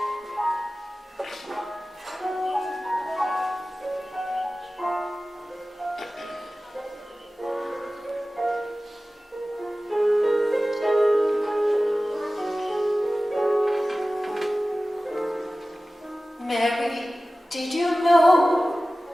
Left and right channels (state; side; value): normal; both; correlation 0.96